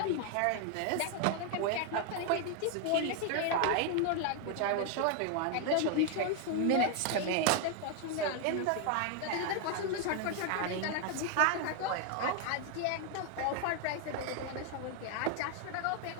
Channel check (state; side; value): different; both; correlation 0.00